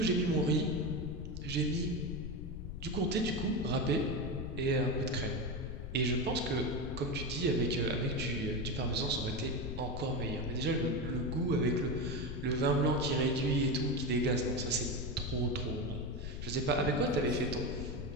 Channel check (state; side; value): noise; left; rumble, 7 dB below the sound